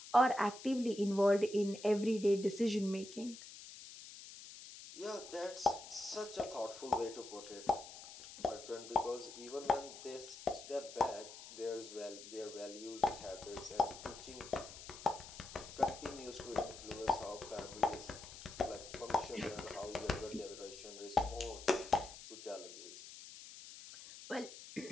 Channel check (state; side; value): noise; left; hiss, 14 dB below the sound